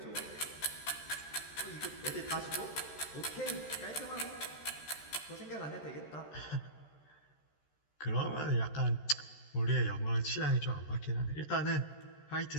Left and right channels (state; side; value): late; right; 13 ms